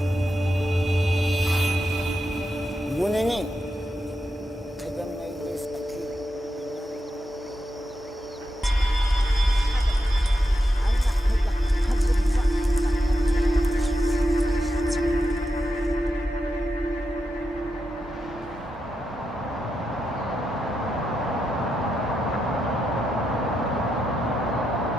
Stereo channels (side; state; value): both; normal; correlation 0.86